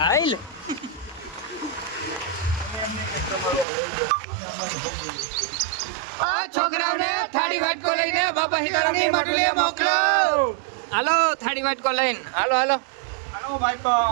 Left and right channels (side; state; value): left; drops out; at 3.7 s